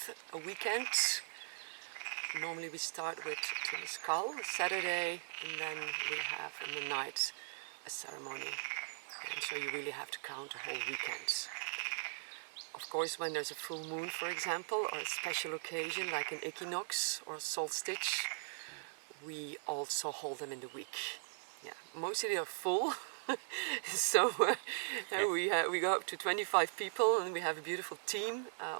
a weekend. Normally we start with Temazcal, Saturday, and then we have in the night a ceremony. And so you really have to count a whole weekend. Of course, when there's a full moon, for example, or a special occasion like an equinox or a solstice, we also hold them in the week. Yeah, mostly they are full. So we go up to 25 people, and we have a beautiful team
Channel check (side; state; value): left; silent; digital silence